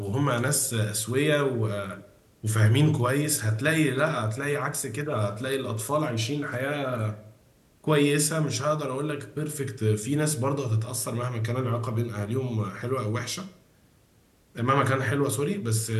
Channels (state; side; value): identical; both; correlation 1.00